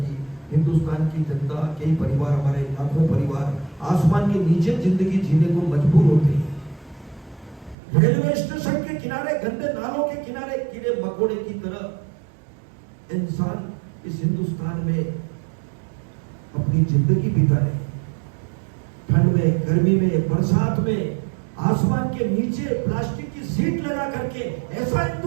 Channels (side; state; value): left; drops out; at 7.8 s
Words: हिंदुस्तान की जनता, कई परिवार, हमारे लाखों परिवार आसमान के नीचे जिंदगी जीने को मजबूर होते हैं। रेलवे स्टेशन के किनारे, गंदे नालों के किनारे कीड़े मकोड़े की तरह इंसान इस हिंदुस्तान में अपनी जिंदगी बिता रहे। ठंड में, गर्मी में, बरसात में, आसमान के नीचे प्लास्टिक की सीट लगा करके ऐसा